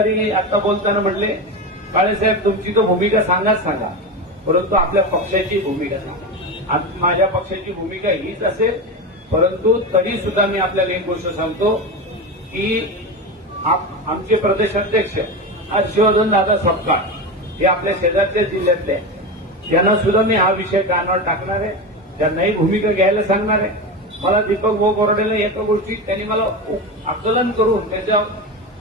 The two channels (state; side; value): normal; both; correlation 0.20